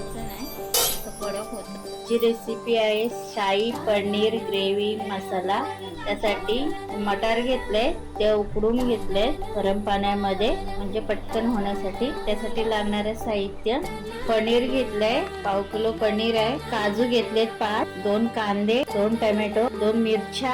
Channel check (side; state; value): both; identical; correlation 1.00